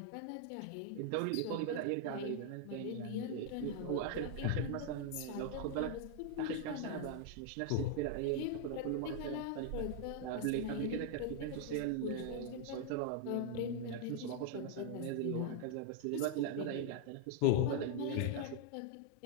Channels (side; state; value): both; different; correlation 0.00